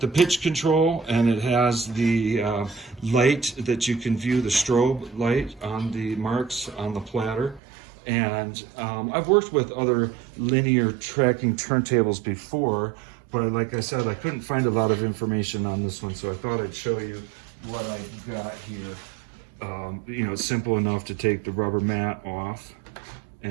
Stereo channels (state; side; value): drops out; left; at 7.6 s